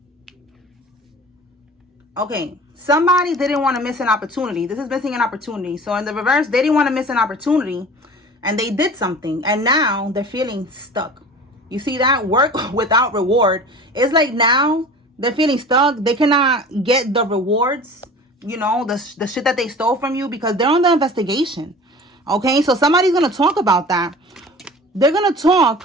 Okay, somebody didn't want to miss an opportunity. This is missing an opportunity. So in the reverse, they didn't want to miss an opportunity and they did something and now they're feeling stuck. You see that? Work without reward. It's like now they're feeling stuck. They cannot get the rewards you know, the shit that they stole from you, because they're on the investigation. Okay, so somebody's going to talk about that. They're going to talk.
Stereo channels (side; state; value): both; normal; correlation 0.40